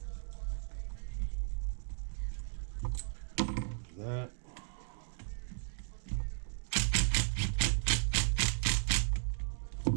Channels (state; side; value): silent; left; digital silence